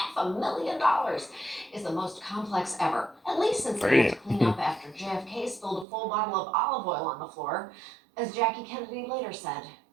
$500,000 is the most complex ever, at least since they had to clean up after JFK spilled a full bottle of olive oil on the floor. As Jackie Kennedy later said,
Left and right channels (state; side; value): drops out; left; at 5.9 s